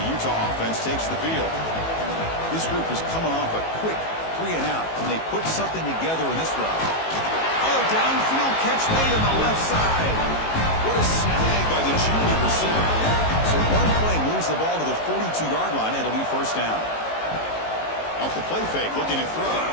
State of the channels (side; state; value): right; late; 18 ms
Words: the Utah offense takes the field. This group is coming off a quick 3 and out. Can they put something together in this drive? Oh, downfield catch made on the left side. What a snag by the junior receiver. So one play moves the ball to the 42-yard line. It'll be first down. Off the play fake, looking to throw.